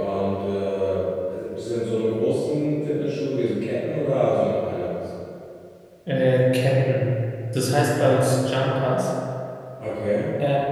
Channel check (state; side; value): identical; both; correlation 1.00